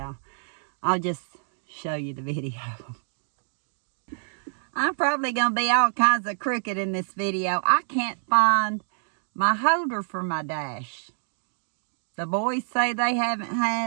I'll just show you the video. I'm probably going to be all kinds of crooked in this video. I can't find my holder for my dash. The boys say they haven't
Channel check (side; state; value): left; silent; digital silence